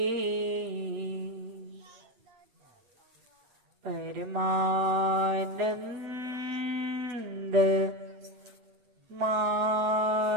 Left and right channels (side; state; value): left; late; 8.6 ms